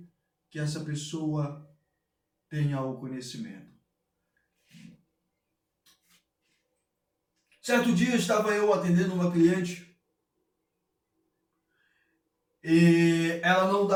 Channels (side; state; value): both; identical; correlation 1.00